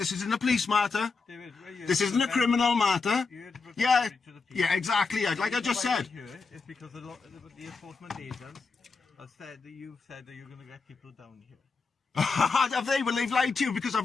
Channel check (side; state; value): right; quieter; 4.6 dB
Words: isn't a police matter. This isn't a criminal matter. Yeah, exactly. Like I just said. It's because the enforcement agents have said that you've said that you're going to get people down here. Have they? Well, they've lied to you because